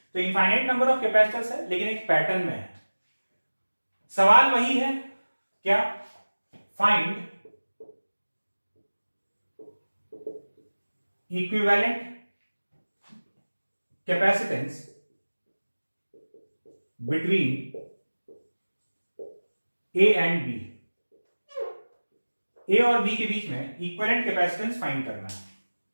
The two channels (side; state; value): both; inverted; correlation -1.00